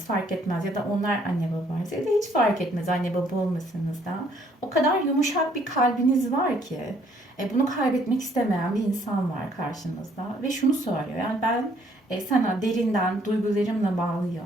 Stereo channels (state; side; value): normal; both; correlation 0.64